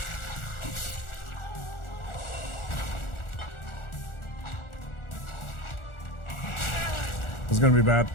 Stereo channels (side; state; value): right; late; 1.4 ms